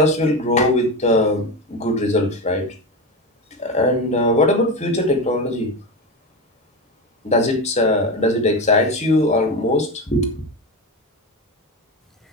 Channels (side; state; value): both; normal; correlation 0.19